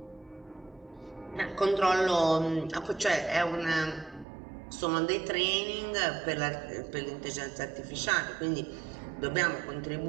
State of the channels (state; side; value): drops out; left; at 4.2 s